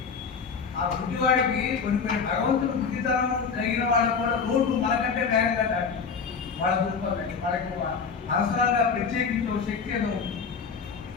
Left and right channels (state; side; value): quieter; right; 5.7 dB